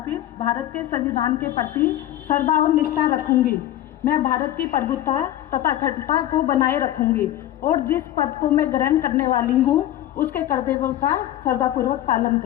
भारत के संविधान के प्रति श्रद्धा और निष्ठा रखूंगी। मैं भारत की प्रभुता तथा अखंडता को बनाए रखूंगी और जिस पद को मैं ग्रहण करने वाली हूँ उसके कर्तव्यों का श्रद्धापूर्वक पालन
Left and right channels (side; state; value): right; quieter; 13.1 dB